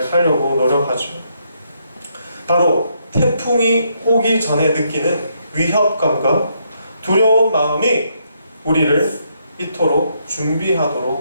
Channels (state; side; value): inverted; both; correlation -0.75